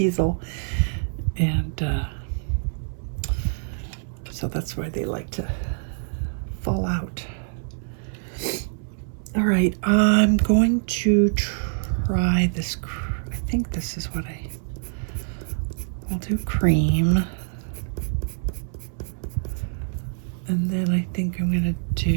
And so that's why they like to fall out. All right, I'm going to try this. I think this is what I'll do cream. And then I think I'm gonna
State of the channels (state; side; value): silent; left; 61 dB below the other